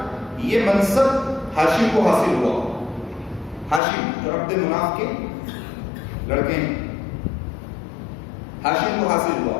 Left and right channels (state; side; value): drops out; right; at 3.8 s